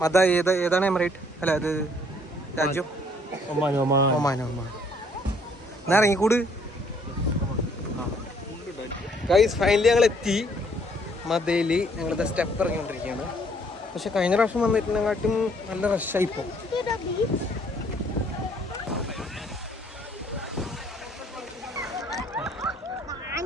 ഏതാണ് എമിറേറ്റ്? അല്ല, അത് രാജ്യം ഒമാൻ. എന്നാ ഇറങ്ങിക്കൂട് ഗൈസ്. ഫൈനലി ഞങ്ങൾ എത്തി മദയിൽ. ഞങ്ങളിത് സ്റ്റെപ്പ് ഇറങ്ങിക്കൊണ്ടിരിക്കുകയാണ്. പക്ഷെ കഴിഞ്ഞ പ്രാവശ്യം വന്നിട്ടുണ്ടെങ്കാട്ടും നല്ല റഷായി ഇപ്പോൾ.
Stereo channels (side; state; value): both; normal; correlation 0.63